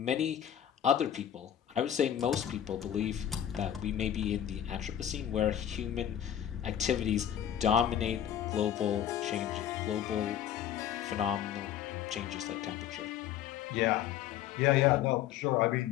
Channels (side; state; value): right; quieter; 10.4 dB